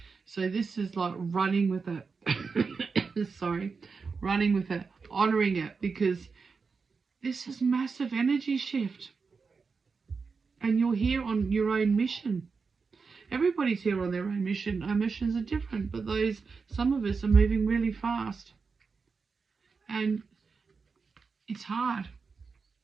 So this is like running with it. Sorry. Running with it. Honouring it, because this is massive energy shift. And you're here on your own mission. Everybody's here on their own mission. Our missions are different, but some of us are moving really fast. And it's hard.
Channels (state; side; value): quieter; left; 4.9 dB